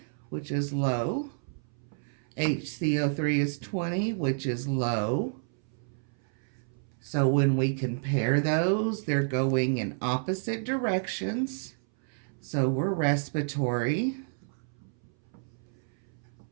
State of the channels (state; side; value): silent; left; 58 dB below the other